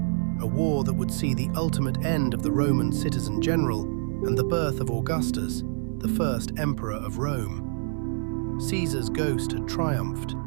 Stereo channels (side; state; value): left; silent; 56 dB below the other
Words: a war that would see the ultimate end of the Roman citizen general and the birth of Augustus, the first emperor of Rome. Caesar's ghost had triumphed.